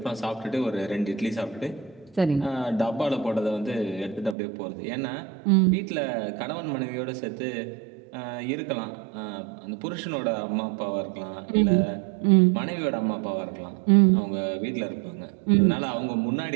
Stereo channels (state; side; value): drops out; left; at 4.4 s